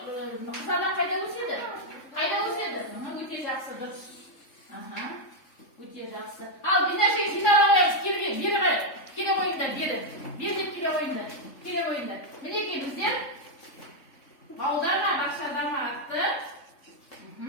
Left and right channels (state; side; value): late; right; 3.5 ms